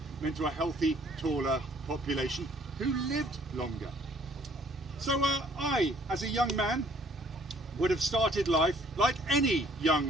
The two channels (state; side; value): normal; both; correlation 0.60